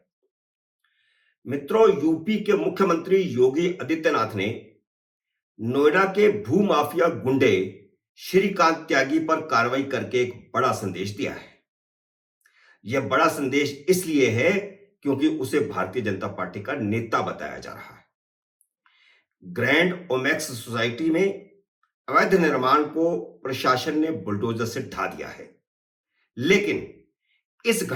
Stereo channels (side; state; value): both; identical; correlation 1.00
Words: मित्रों, यूपी के मुख्यमंत्री योगी आदित्यनाथ ने नोएडा के भूमाफिया गुंडे श्रीकांत त्यागी पर कार्रवाई करके एक बड़ा संदेश दिया है। यह बड़ा संदेश इसलिए है क्योंकि उसे भारतीय जनता पार्टी का नेता बताया जा रहा है। ग्रैंड ओमेक्स सोसाइटी में अवैध निर्माण को प्रशासन ने बुलडोजर से ढा दिया है, लेकिन इस